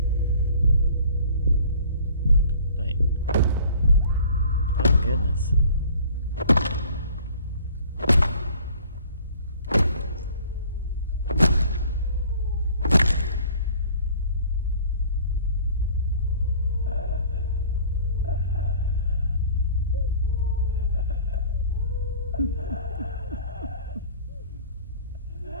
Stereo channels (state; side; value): inverted; both; correlation -0.50